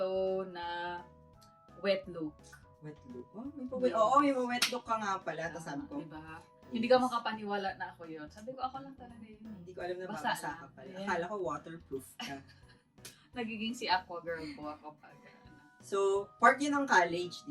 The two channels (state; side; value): identical; both; correlation 1.00